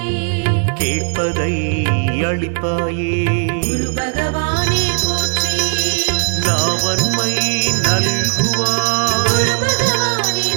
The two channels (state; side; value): silent; left; 68 dB below the other